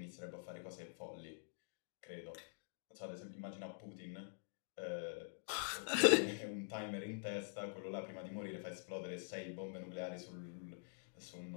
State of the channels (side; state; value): right; silent; digital silence